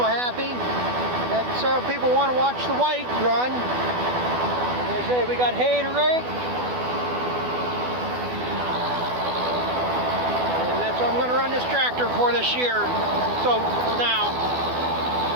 happy. That several people want to watch the white run. They say we got hay to rake. And that's what I'm going to run this tractor for this year. So, for now.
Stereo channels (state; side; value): late; left; 12 ms